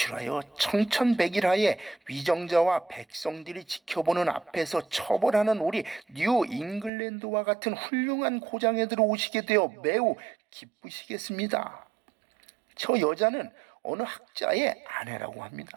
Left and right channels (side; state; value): left; drops out; at 6.9 s